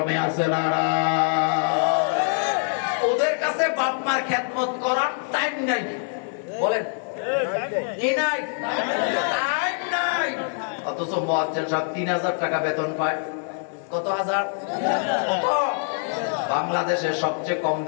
আছে না? ওদের কাছে বাপ মার খেদমত করার টাইম নাই। বলেন কি নাই? টাইম নাই। অথচ মুয়াজ্জিন সাহেব 3000 টাকা বেতন পায়। কত হাজার? কত? বাংলাদেশে সবচেয়ে কম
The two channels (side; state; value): right; silent; 59 dB below the other